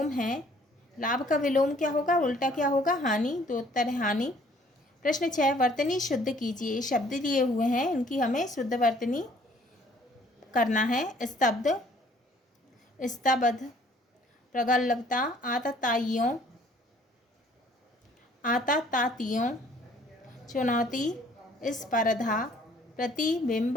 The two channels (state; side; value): normal; both; correlation 0.59